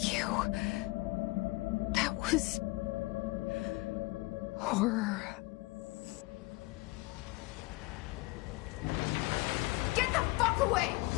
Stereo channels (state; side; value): quieter; right; 23.1 dB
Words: you. That was... horror. Get the fuck away!